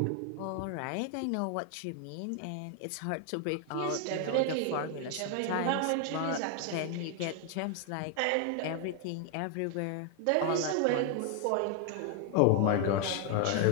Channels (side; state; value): both; different; correlation 0.00